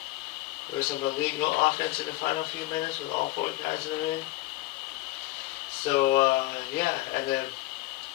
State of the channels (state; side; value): quieter; right; 18.0 dB